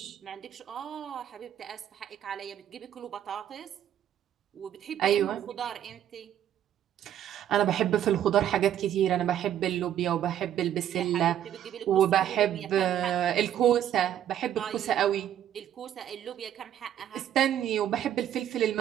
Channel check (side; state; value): left; quieter; 10.7 dB